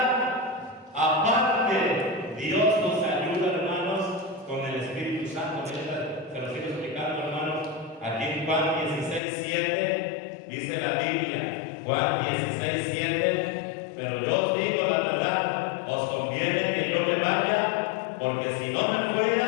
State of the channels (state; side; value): drops out; right; at 9.2 s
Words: Aparte, Dios nos ayuda, hermanos, con el Espíritu Santo. Se lo sigo explicando, hermanos. Aquí en Juan 16:7 dice la Biblia, Juan 16:7, pero yo os digo la verdad, os conviene que yo me vaya, porque si no me